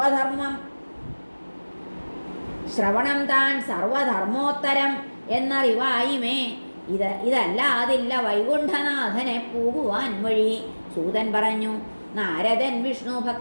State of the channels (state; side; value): inverted; both; correlation -1.00